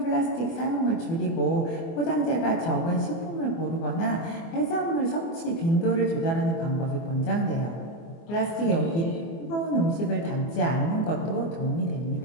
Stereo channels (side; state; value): right; late; 24 ms